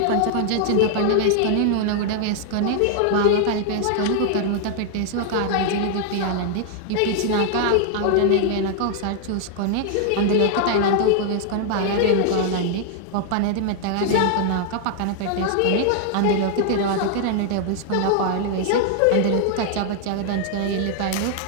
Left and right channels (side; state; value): both; different; correlation 0.00